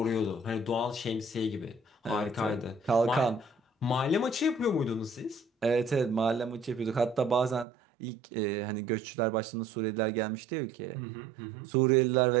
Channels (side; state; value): left; drops out; at 7.7 s